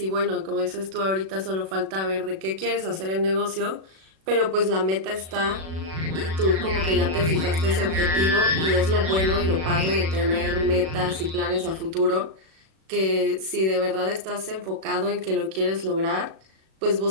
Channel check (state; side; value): late; left; 37 ms